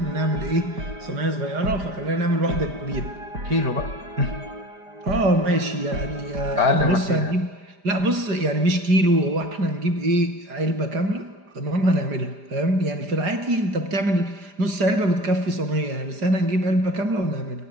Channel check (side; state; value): left; late; 5.0 ms